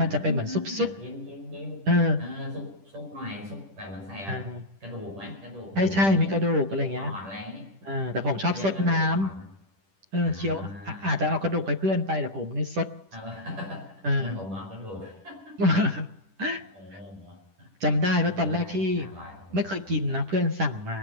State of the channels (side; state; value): left; late; 10 ms